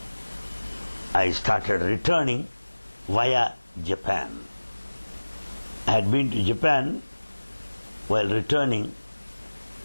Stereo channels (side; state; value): both; inverted; correlation -1.00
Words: I started returning via Japan. I had been to Japan while returning